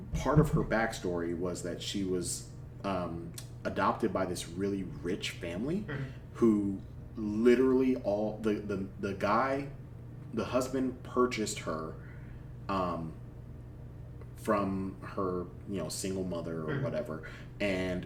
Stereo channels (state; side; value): identical; both; correlation 1.00